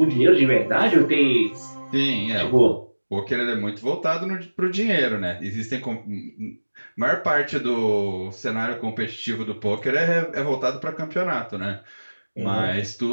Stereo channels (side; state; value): both; inverted; correlation -1.00